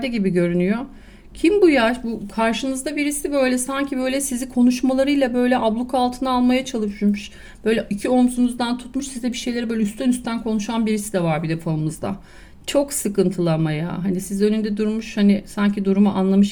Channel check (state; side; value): identical; both; correlation 1.00